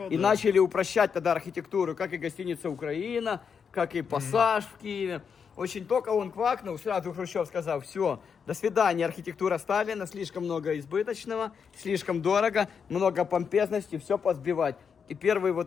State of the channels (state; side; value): quieter; right; 6.5 dB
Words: и да. начали упрощать тогда архитектуру, как и гостиница «Украина», как и «Пассаж» в Киеве. Очень только он квакнул, сразу Хрущев сказал: все, до свидания, архитектура Сталина, слишком много избыточного, слишком дорого, много помпезности, все позбивать. И первый